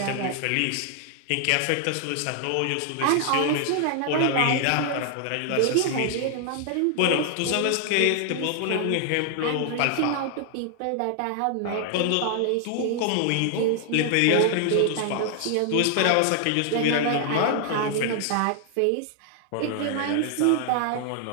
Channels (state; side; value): different; both; correlation 0.00